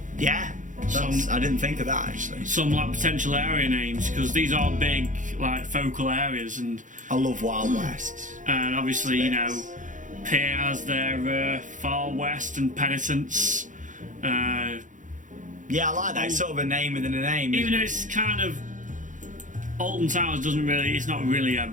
Yeah, I didn't think of that actually. Some like potential area names, because these are big like focal areas, and I love Wild West. And obviously, you know, Pier has their Far West and Penitence. Yeah, I like that. It's sort of a name within a name. Even though it's kind of Alton Towers it's not really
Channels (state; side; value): late; left; 0.37 ms